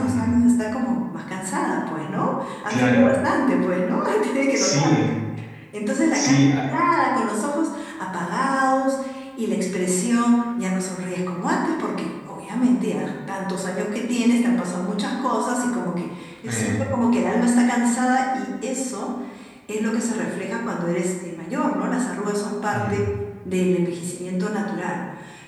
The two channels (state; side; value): identical; both; correlation 1.00